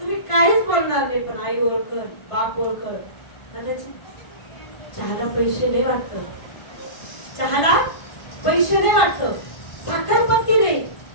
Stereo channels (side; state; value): right; late; 1.5 ms